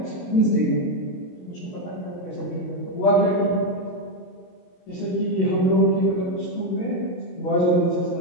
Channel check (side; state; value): right; late; 22 ms